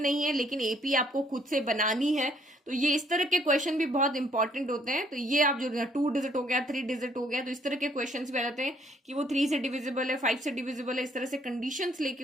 है लेकिन एपी आपको खुद से बनानी है। तो ये इस तरह के क्वेश्चन भी बहुत इंपॉर्टेंट होते हैं। तो ये आप जो 2 डिजिट हो गया, 3 डिजिट हो गया, तो इस तरह के क्वेश्चंस भी आ जाते हैं कि वो 3 से डिविजिबल है, 5 से डिविजिबल है, इस तरह से कंडीशंस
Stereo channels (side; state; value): both; normal; correlation 0.65